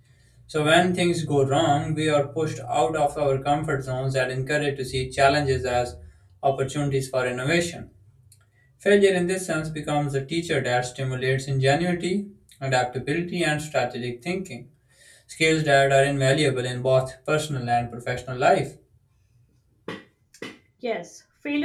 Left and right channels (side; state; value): both; identical; correlation 1.00